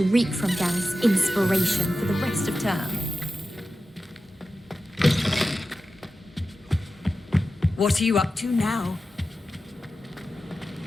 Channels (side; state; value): both; normal; correlation 0.93